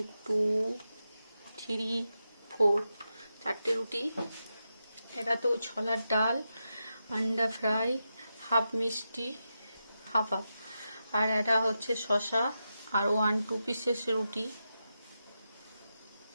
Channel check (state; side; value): inverted; both; correlation -0.88